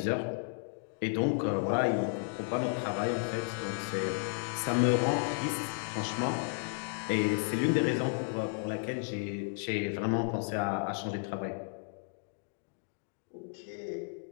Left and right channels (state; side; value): silent; right; 56 dB below the other